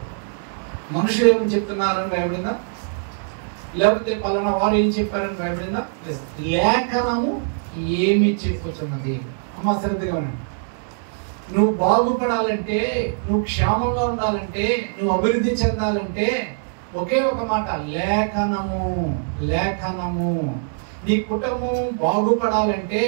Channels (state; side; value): silent; left; digital silence